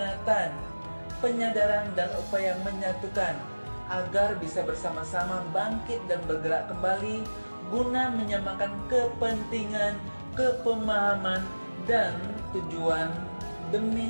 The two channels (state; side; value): inverted; both; correlation -1.00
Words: penyadaran dan upaya menyatukan agar bisa bersama-sama bangkit dan bergerak kembali guna menyamakan kepentingan, kepemahaman, dan tujuan